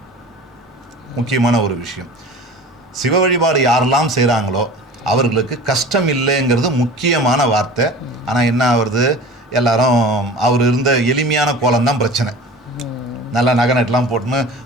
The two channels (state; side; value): normal; both; correlation 0.38